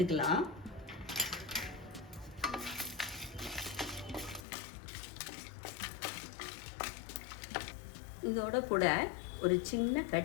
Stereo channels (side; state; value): right; drops out; at 4.4 s